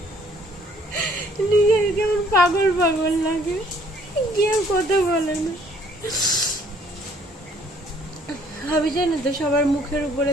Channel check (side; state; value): both; normal; correlation 0.61